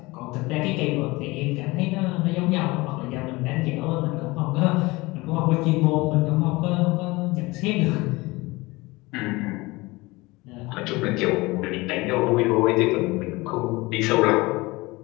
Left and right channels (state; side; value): quieter; right; 22.3 dB